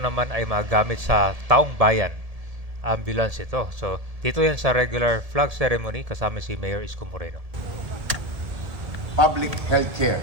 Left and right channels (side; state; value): left; late; 1.7 ms